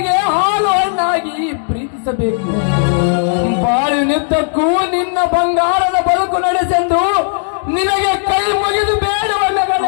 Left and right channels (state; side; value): silent; right; digital silence